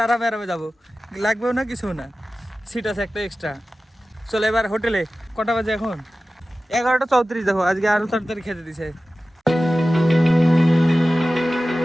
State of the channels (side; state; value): both; normal; correlation 0.95